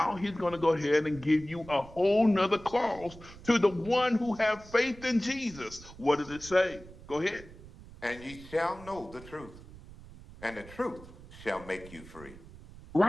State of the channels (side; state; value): right; noise; rumble, 18 dB below the sound